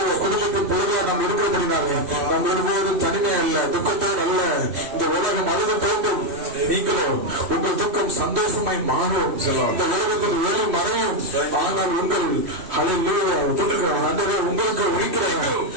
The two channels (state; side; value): late; left; 3.1 ms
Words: குடும்பத்தின் பொழுதாக நாம் இருக்கிறபடினாலே நாம் ஒருபோது தனிமை அல்ல, துக்கத்தோடு அல்ல. இந்த உலகம் அழுத தோன்றும், நீங்களோ உங்கள் துக்கம் சந்தோஷமாய் மாறும். இந்த உலகத்தில் வேலை மறையும், ஆனால் உங்கள் உங்களுக்கு